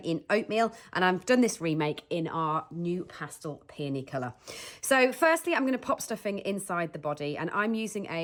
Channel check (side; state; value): both; identical; correlation 1.00